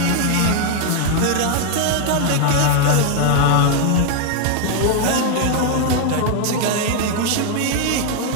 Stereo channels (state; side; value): different; both; correlation 0.00